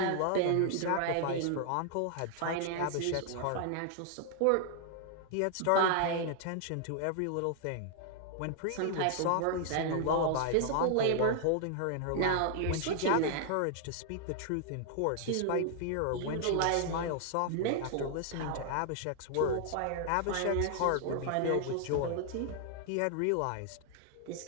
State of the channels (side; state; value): both; different; correlation 0.00